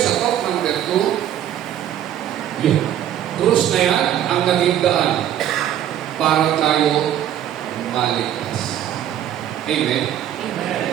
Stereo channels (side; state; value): left; quieter; 11.0 dB